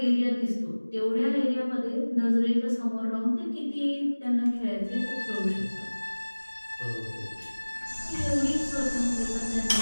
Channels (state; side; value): inverted; both; correlation -1.00